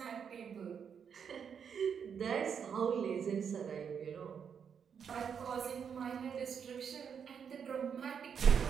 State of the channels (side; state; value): left; quieter; 7.2 dB